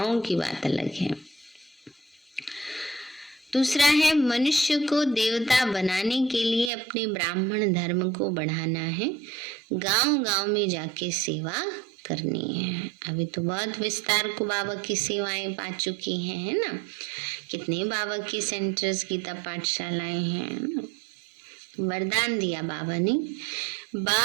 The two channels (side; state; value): left; drops out; at 6.7 s